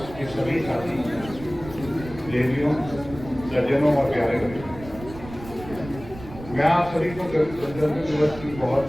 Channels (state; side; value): noise; right; rumble, 15 dB below the sound